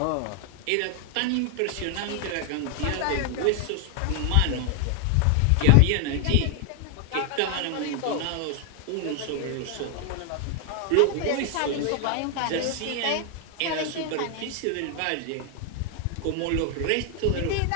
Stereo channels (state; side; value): different; both; correlation 0.00